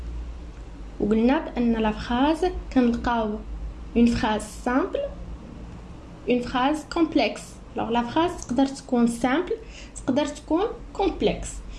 وقلنا بأن la phrase كنلقاو une phrase simple, une phrase complexe. Alors la phrase تقدر تكون simple, تقدر تكون complexe.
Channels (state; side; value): identical; both; correlation 1.00